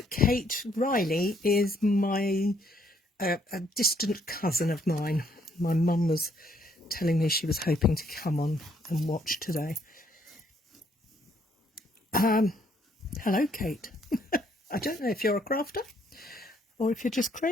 Kate Riley is my a distant cousin of mine. My mum was telling me she was hoping to come on and watch today. Hello, Kate. I don't know if you're a crafter or if you're just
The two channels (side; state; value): both; normal; correlation 0.68